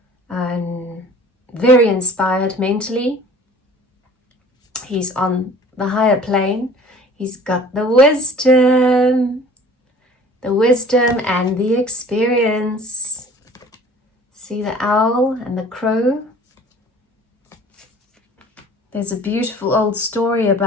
And very inspired mentally. He's on the higher plane. He's got the wisdom and the experience. See the owl and the crow? There's a beautiful old story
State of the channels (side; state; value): both; normal; correlation 0.48